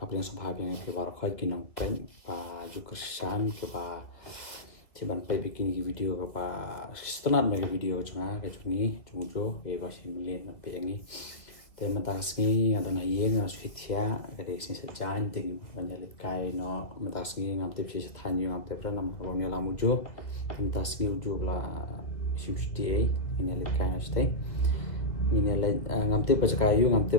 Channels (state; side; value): late; right; 1.9 ms